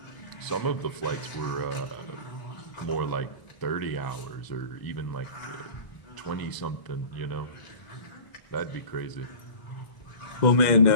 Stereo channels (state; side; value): late; right; 1.0 ms